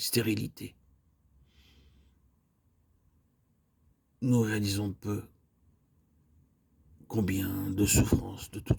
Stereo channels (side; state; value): both; identical; correlation 1.00